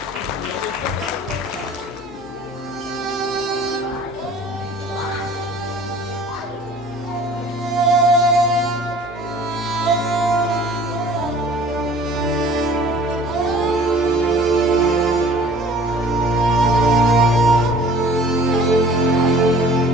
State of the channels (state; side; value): normal; both; correlation 0.49